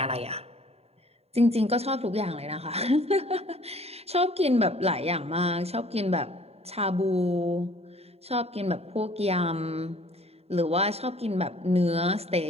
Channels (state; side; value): late; left; 0.30 ms